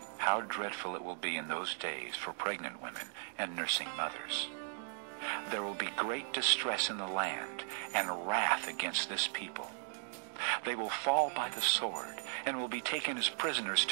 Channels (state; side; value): silent; left; digital silence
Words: How dreadful it will be in those days for pregnant women and nursing mothers. There will be great distress in the land, and wrath against this people. They will fall by the sword, and will be taken as prisoners